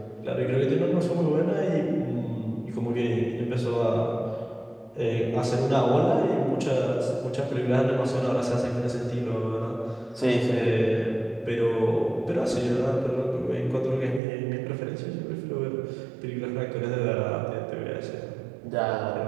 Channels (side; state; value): left; drops out; at 14.2 s